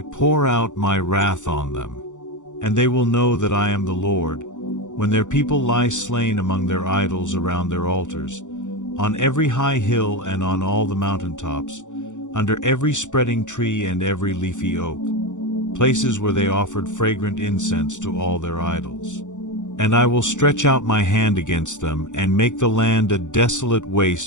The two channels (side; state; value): right; late; 0.85 ms